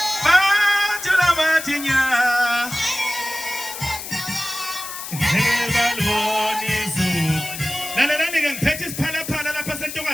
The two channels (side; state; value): left; noise; hiss, 9 dB below the sound